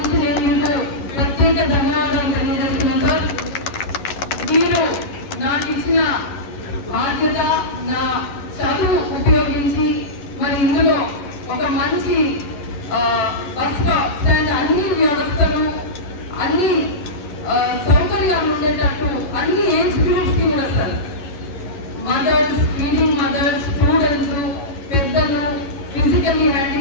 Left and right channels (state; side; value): late; right; 11 ms